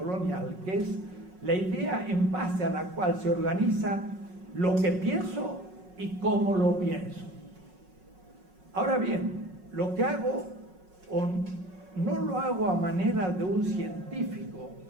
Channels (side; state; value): left; late; 5.4 ms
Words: que es la idea en base a la cual se organiza lo que pienso y cómo lo pienso. Ahora bien, lo que hago no lo hago a manera de un científico